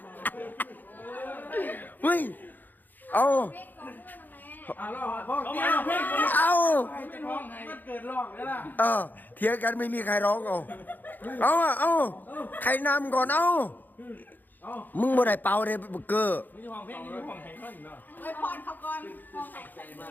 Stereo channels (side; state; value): right; late; 0.087 ms